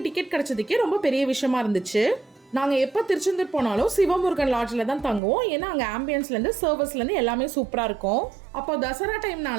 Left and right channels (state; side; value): drops out; left; at 5.2 s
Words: டிக்கெட் கிடச்சதுக்கே ரொம்ப பெரிய விஷயமா இருந்துச்சு. நாங்கள் எப்போ திருச்செந்தூர் போனாலும் சிவமுருகன் லாட்ஜில் தான் தங்குவோம். ஏன்னா அங்கே ஆம்பியன்ஸ்லேருந்து சர்வஸ்லேருந்து எல்லாமே சூப்பராக இருக்கும். அப்போ தசரா